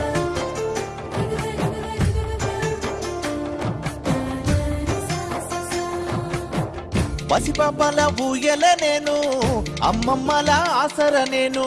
పసిపాపల ఊయల నేను, అమ్మమ్మల ఆసర నేను.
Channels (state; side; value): identical; both; correlation 1.00